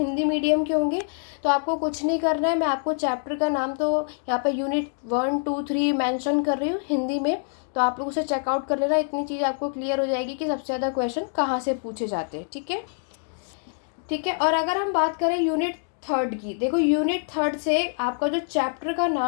मीडियम के होंगे, तो आपको कुछ नहीं करना है। मैं आपको चैप्टर का नाम तो यहाँ पे यूनिट 1, 2, 3 मेंशन कर रही हूँ हिंदी में, तो आप लोग उसे चेकआउट कर लेना। इतनी चीज़ आपको क्लियर हो जाएगी कि सबसे ज़्यादा क्वेश्चन कहाँ से पूछे जाते हैं, ठीक है। ठीक है, और अगर हम बात करें यूनिट थर्ड की, देखो यूनिट थर्ड से आपका जो चैप्टर का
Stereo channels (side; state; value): right; silent; digital silence